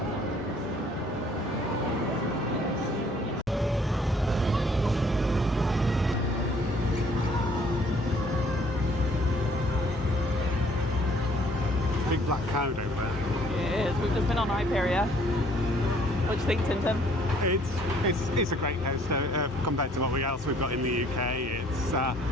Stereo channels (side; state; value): both; normal; correlation 0.60